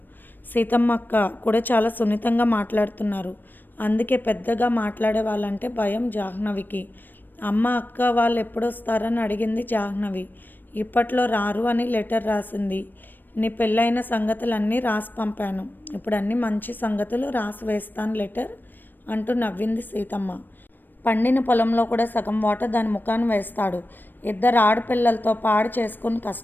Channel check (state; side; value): late; right; 0.092 ms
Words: సీతమ్మ అక్క కూడా చాలా సున్నితంగా మాట్లాడుతున్నారు. అందుకే పెద్దగా మాట్లాడే వాళ్ళంటే భయం జాహ్నవికి. అమ్మ అక్క వాళ్ళు ఎప్పుడొస్తారని అడిగింది జాహ్నవి. ఇప్పట్లో రారు అని లెటర్ రాసింది. నీ పెళ్ళైన సంగతులన్నీ రాసి పంపాను. ఇప్పుడు అన్ని మంచి సంగతులు రాసి వేస్తాను లెటర్ అంటూ నవ్వింది సీతమ్మ. పండిన పొలంలో కూడా సగం వాటర్ దాని ముఖాన్ని వేస్తాడు. ఇద్దరు ఆడపిల్లలతో పాడు చేసుకుని